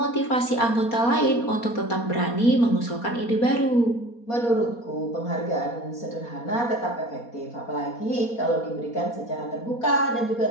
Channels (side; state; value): right; late; 4.2 ms